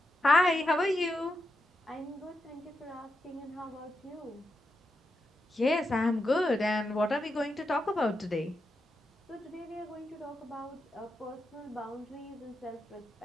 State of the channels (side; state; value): both; normal; correlation 0.85